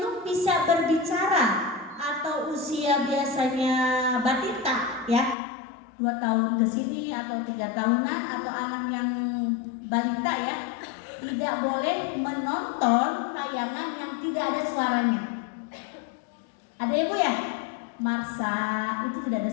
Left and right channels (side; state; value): right; drops out; at 5.4 s